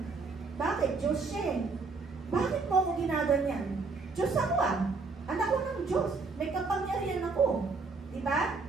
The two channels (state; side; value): quieter; left; 4.2 dB